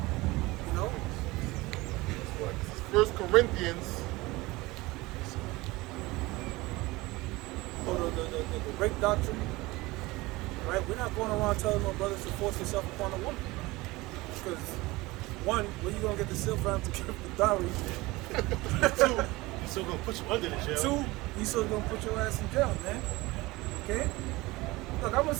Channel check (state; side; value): quieter; left; 21.1 dB